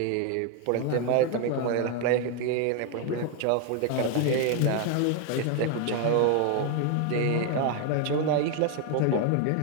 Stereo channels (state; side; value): different; both; correlation 0.01